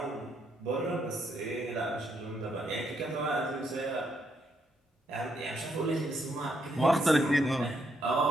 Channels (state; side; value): normal; both; correlation 0.76